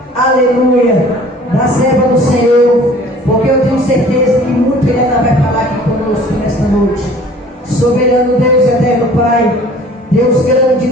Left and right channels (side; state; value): both; normal; correlation 0.50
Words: aleluia, da serva do Senhor, porque eu tenho certeza que muito Ele ainda vai falar aqui conosco nesta noite. Soberano Deus, eterno Pai, Deus grande,